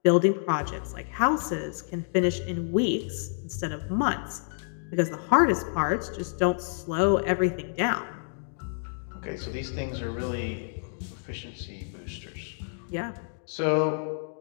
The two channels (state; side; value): silent; right; digital silence